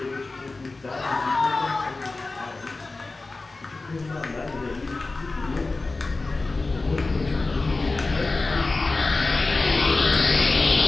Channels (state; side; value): quieter; right; 3.5 dB